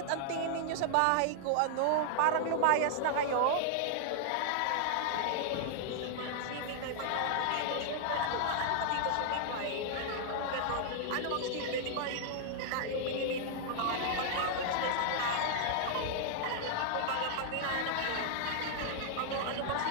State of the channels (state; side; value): different; both; correlation -0.01